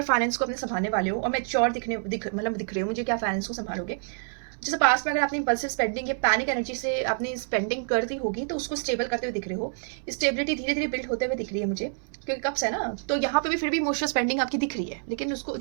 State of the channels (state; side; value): silent; left; 60 dB below the other